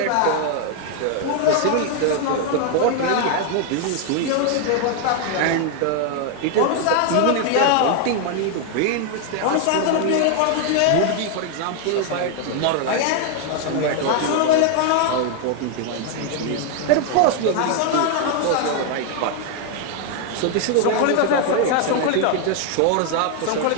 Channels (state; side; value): different; both; correlation 0.00